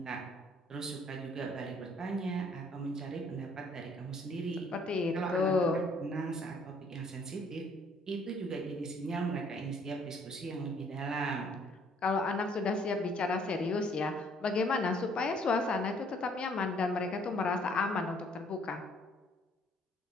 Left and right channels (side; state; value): both; normal; correlation 0.62